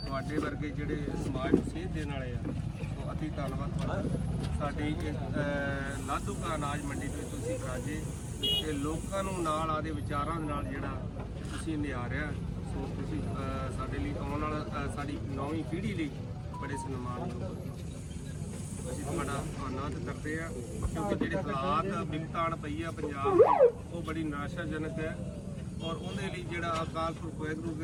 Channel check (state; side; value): identical; both; correlation 1.00